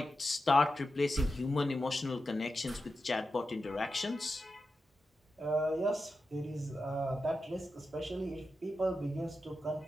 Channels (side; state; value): both; normal; correlation 0.90